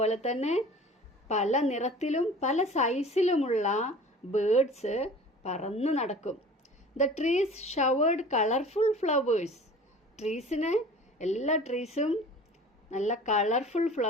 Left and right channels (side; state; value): both; normal; correlation 0.43